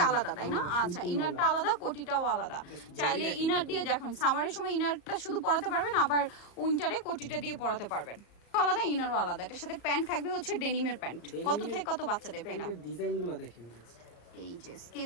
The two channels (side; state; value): right; late; 34 ms